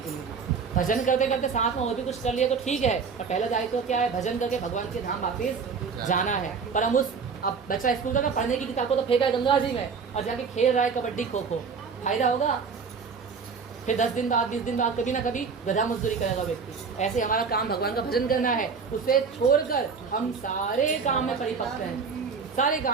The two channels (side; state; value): left; quieter; 5.5 dB